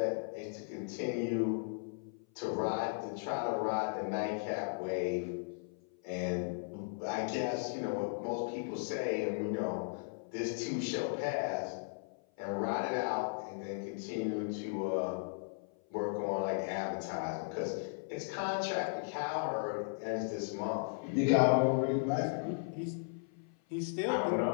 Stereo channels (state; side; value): silent; right; 53 dB below the other